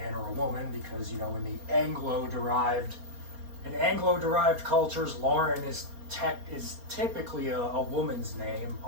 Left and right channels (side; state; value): left; late; 4.3 ms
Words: or a woman because, you know, in the Anglo-derived cultures, Lauren is typically a woman's name,